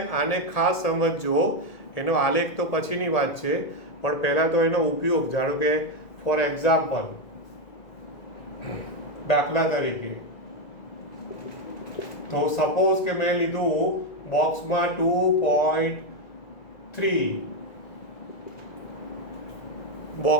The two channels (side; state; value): right; late; 2.0 ms